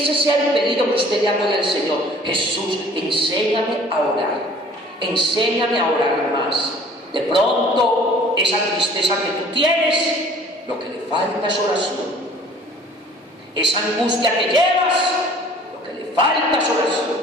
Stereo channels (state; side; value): normal; both; correlation 0.51